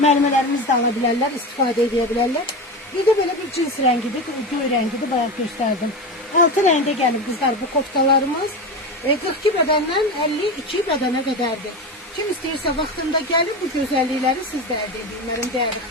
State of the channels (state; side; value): normal; both; correlation 0.22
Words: Mərmələrimiz də ala bilərlər, istifadə edə bilərlər. Bir de böyle bir cins rengidir, göy rengidir, bayaq gösterdim. 6 renge gelip kızlar bu koftalarımız 42 bedenden 52 bedene kadardır. Kim istəyirsə vaxtında gəlib bu gözəllikləri siz də əldə edin, mənim dəyərli